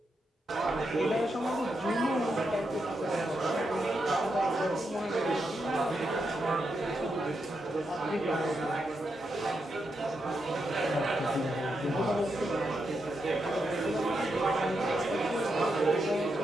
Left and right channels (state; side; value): normal; both; correlation 0.84